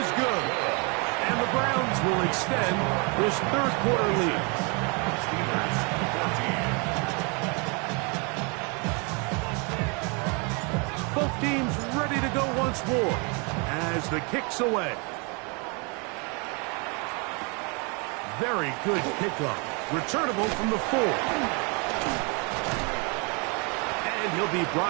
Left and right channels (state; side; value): quieter; left; 32.6 dB